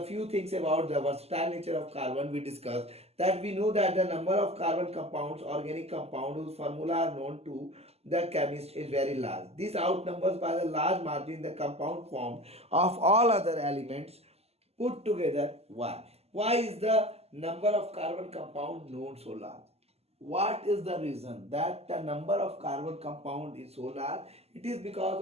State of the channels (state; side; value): late; left; 0.29 ms